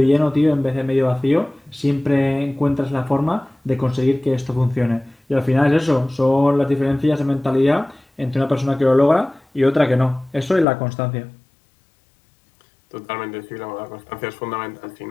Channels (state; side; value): drops out; right; at 10.7 s